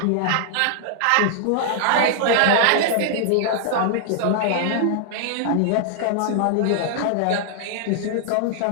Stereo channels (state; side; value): different; both; correlation -0.01